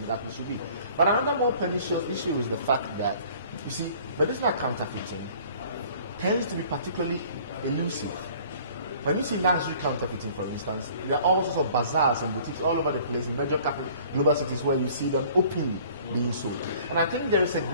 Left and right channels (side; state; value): both; inverted; correlation -0.52